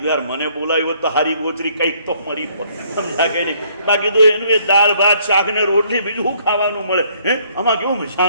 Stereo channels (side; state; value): both; inverted; correlation -0.65